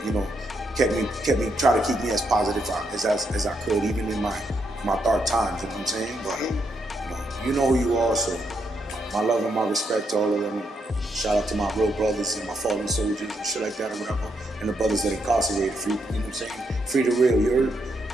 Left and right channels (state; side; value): normal; both; correlation 0.78